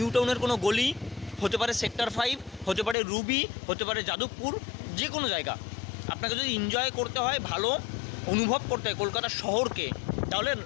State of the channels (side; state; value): right; drops out; at 3.0 s